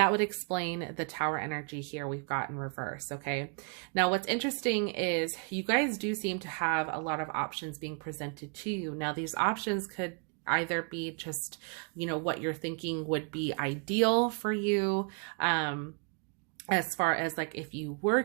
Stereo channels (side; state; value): left; quieter; 38.7 dB